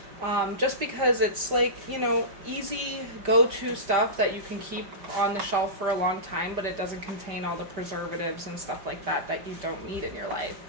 Just because it's like, easy go-to stuff that you can keep on the shelf for a long time, but it doesn't contain all the preservatives and stuff like that that you don't need in your life.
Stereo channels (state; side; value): late; left; 5.1 ms